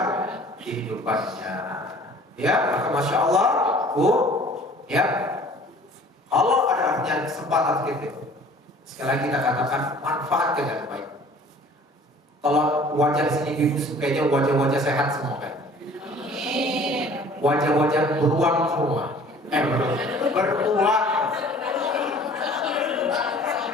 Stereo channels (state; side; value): normal; both; correlation 0.50